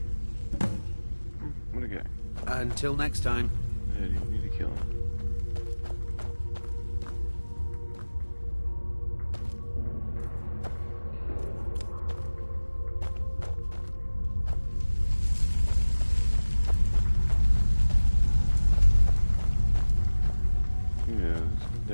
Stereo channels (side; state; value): both; inverted; correlation -1.00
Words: What a guy. Until next time. Yeah, you need to kill him. Yeah, the